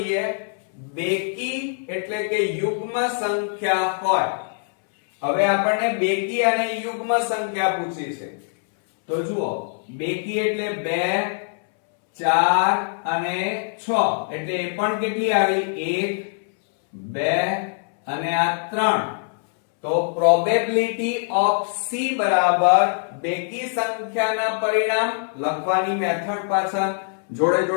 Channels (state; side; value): silent; right; 63 dB below the other